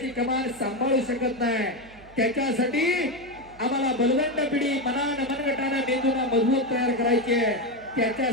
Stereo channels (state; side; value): noise; right; hum, 23 dB below the sound